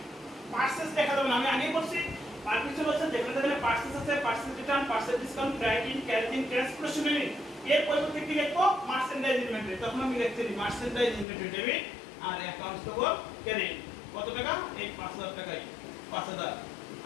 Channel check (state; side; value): drops out; right; at 11.2 s